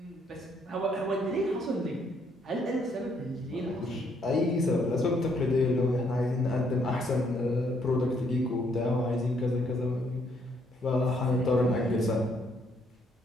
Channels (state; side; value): normal; both; correlation 0.70